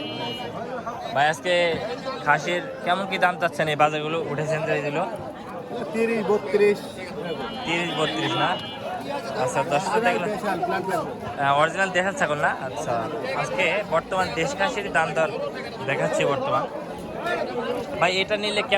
ভাই আজকে খাসির কেমন কি দাম চাচ্ছেন? এই বাজারগুলো উঠেছেন যে এগুলো 30-32 না? আচ্ছা, 10 দেখলো অরিজিনাল দেখার ছাগল না? আচ্ছা, আজকে বর্তমান দেশ খাসির দাম দর দেখাচ্ছি বর্তমান। ভাই এটা নিলে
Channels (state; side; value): identical; both; correlation 1.00